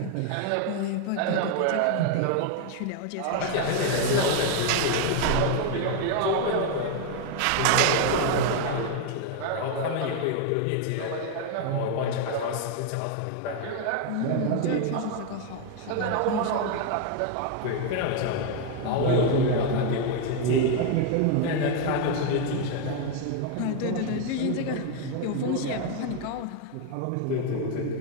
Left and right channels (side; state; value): both; different; correlation 0.01